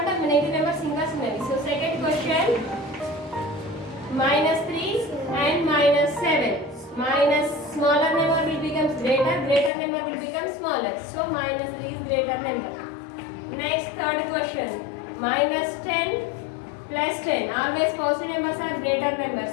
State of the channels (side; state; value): right; drops out; at 9.7 s